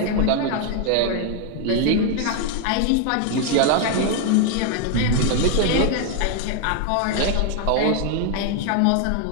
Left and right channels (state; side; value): different; both; correlation 0.00